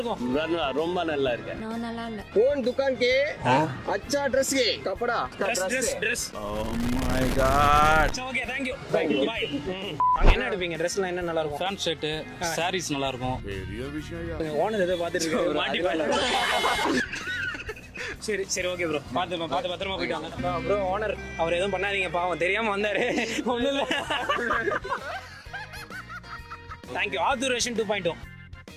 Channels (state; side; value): identical; both; correlation 1.00